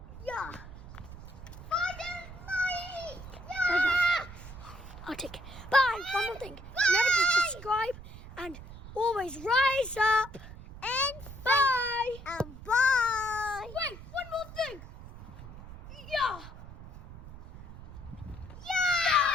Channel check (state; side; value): noise; right; rumble, 14 dB below the sound